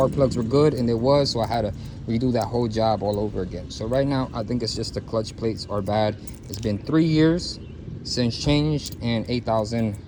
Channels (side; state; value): both; identical; correlation 1.00